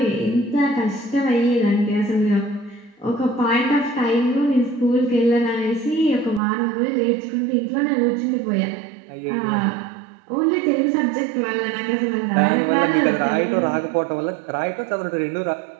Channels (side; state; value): left; drops out; at 6.4 s